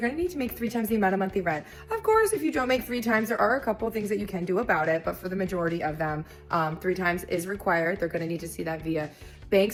going to need to make 3 times the amount of monthly rent. Of course, if you don't make 3 times, there are a couple things that you can do about it, but for the majority of them, 3 times is required. They're going to need to see that via bank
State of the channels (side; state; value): both; identical; correlation 1.00